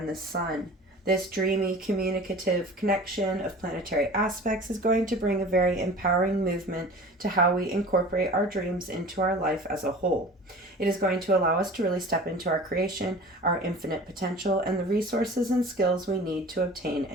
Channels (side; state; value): both; normal; correlation 0.41